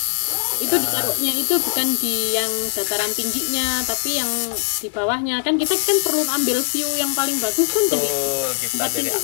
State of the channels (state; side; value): silent; right; digital silence